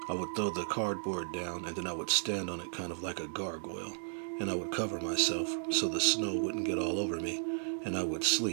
I would throw the cardboard down and then I would stand on it kind of like a gargoyle. And I would cover myself so the snow wouldn't get all over me. And I would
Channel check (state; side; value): silent; left; 55 dB below the other